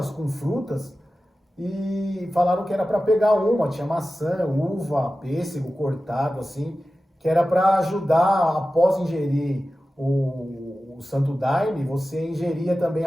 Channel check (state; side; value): normal; both; correlation 0.94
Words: com frutas, e falaram que era para pegar uma, tinha maçã, uva, pêssego cortado, assim, que era para ajudar, após ingerir o Santo Daime, você ingeria também